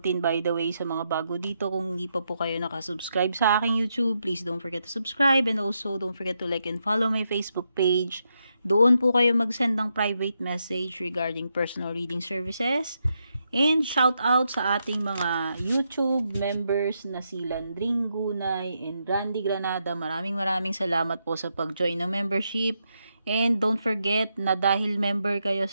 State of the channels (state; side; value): inverted; both; correlation -0.82